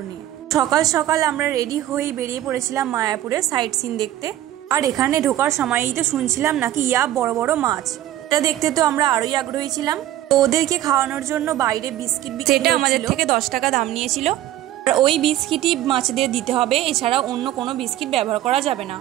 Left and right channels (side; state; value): left; quieter; 13.4 dB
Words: নিয়ে। সকাল সকাল আমরা রেডি হয়ে বেরিয়ে পড়েছিলাম মায়াপুরের সাইট সিন দেখতে। আর এখানে ঢোকার সময়ই তো শুনছিলাম নাকি বড় বড় মাছ। এটা দেখতে তো আমরা আরোই আগ্রহী ছিলাম। তো ওদেরকে খাওয়ানোর জন্য বাইরে বিস্কিট সেটা আমাদের থেকে 10 টাকা দাম নিয়েছিল। আর ওই বিস্কিটই মাছদের দিতে হবে, এছাড়া অন্য কোনো বিস্কিট ব্যবহার করা যাবে না।